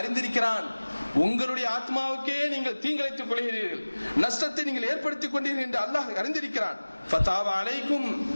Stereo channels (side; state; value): both; inverted; correlation -1.00